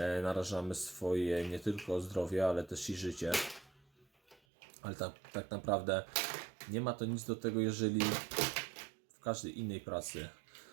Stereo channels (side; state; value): left; drops out; at 4.4 s